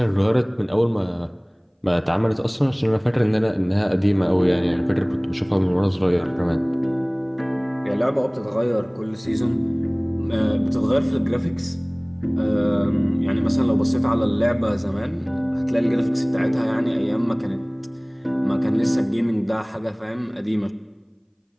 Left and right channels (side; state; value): both; identical; correlation 1.00